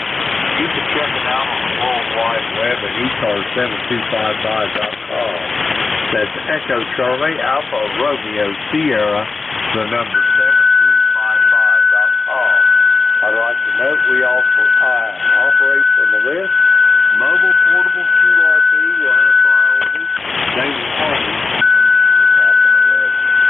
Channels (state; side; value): quieter; right; 4.1 dB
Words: you can check it out on the World Wide Web at ECARS7255.com. That's Echo Charlie Alpha Romeo Sierra, the number 7255.com. I'd like to note we also operate from the list. Mobile portable QRP will have priority. They will always